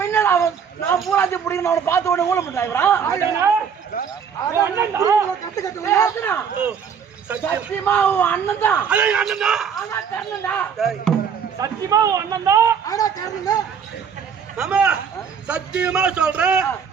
என்ன நான் பூராத்தி பிடிக்கணும் அவனை பார்த்த உடனே ஊழ பண்றான். சத்தியமா உன் அண்ணன் தான். ஆனா கர்ணன்டா. சத்தியமா உன் அண்ணன் தான். ஆனா கர்ணன்டா. ஆமா சத்தியமா சொல்றேன்,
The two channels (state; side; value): quieter; left; 7.1 dB